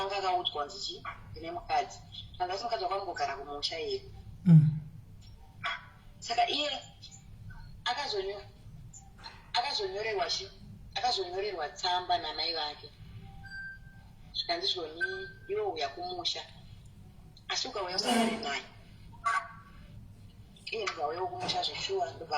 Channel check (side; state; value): both; identical; correlation 1.00